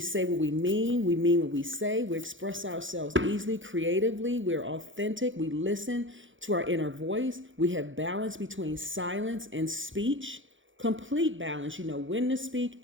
what we mean what we say. We express ourselves easily, creatively. We're authentic. We listen to our inner voice. We have balance between silence and speech. Complete balance. You know when to speak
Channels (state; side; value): late; left; 0.56 ms